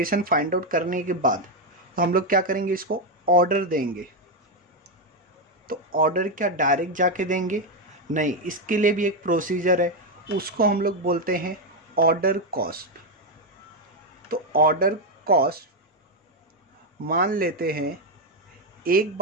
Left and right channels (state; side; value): normal; both; correlation 0.05